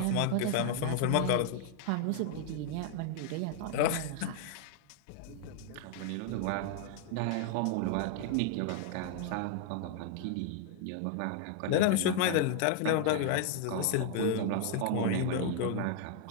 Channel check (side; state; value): both; different; correlation 0.00